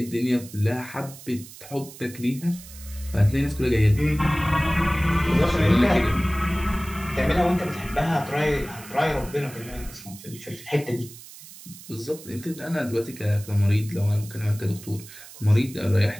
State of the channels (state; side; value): noise; right; hiss, 17 dB below the sound